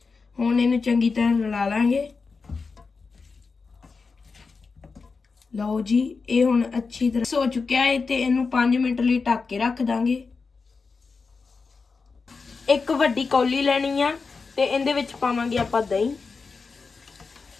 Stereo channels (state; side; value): quieter; right; 4.6 dB